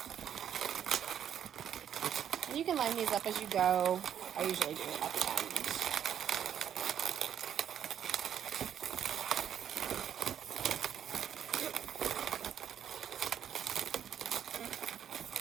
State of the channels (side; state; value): left; quieter; 9.3 dB